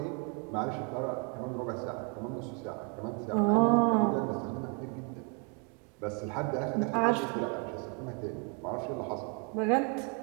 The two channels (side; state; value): left; quieter; 36.2 dB